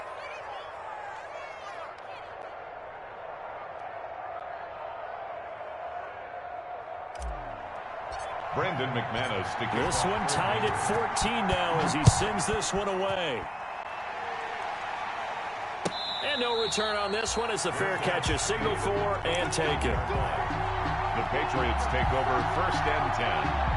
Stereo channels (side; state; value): both; identical; correlation 1.00